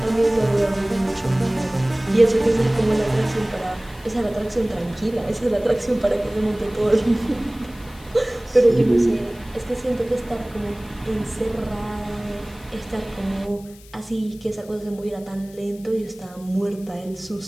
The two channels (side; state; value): left; noise; hiss, 23 dB below the sound